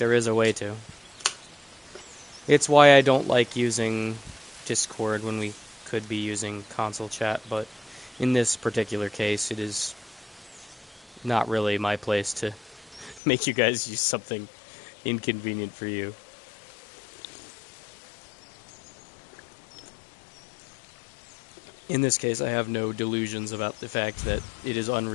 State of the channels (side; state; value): right; drops out; at 13.2 s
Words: is a way to. It's why I don't like using Discord when we could be using console chat, but in this particular case, it is not really my place to make you guys use something inconvenient for you. In this case, I have no delusions about the fact that it is